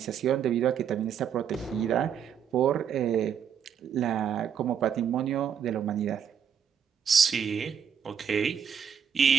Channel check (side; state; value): left; quieter; 7.9 dB